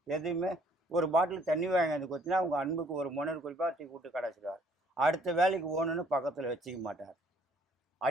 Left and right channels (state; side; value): normal; both; correlation 0.62